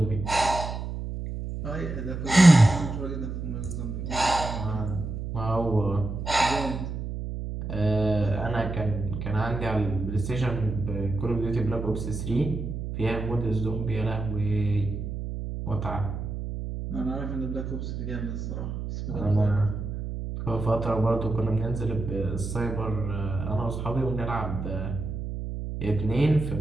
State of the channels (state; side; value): noise; right; hum, 5 dB below the sound